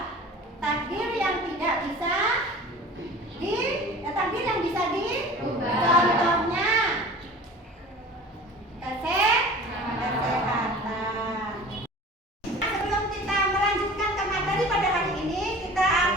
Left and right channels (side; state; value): both; normal; correlation 0.41